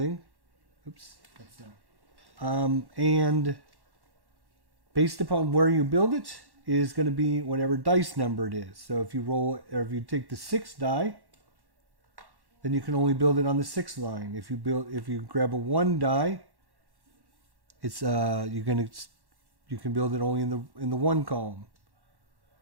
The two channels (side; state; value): left; late; 1.1 ms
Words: Oops, that's not. And based upon where you build it is going to be whatever dice number it is. So if you take the 6 die, then you can only build it on the 6th line. If you grab a 1 die, it's you can build it only in the 1 column.